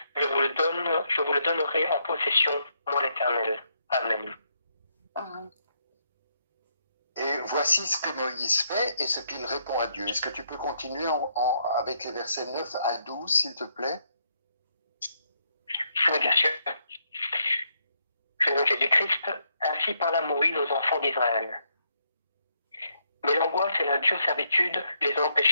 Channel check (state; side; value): inverted; both; correlation -0.75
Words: Je vous le donnerai en possession, moi l'Éternel. Amen. Et voici ce que Moïse fait et ce qu'il répond à Dieu. Est-ce que tu peux continuer avec les versets 9 à 12, s'il te plaît? Oui, bien sûr. Je nom Jésus-Christ, ainsi parla Moïse aux enfants d'Israël. Mais l'angoisse et la dure servitude les